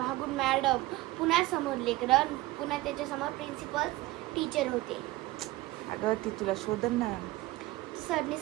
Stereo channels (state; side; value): quieter; left; 18.7 dB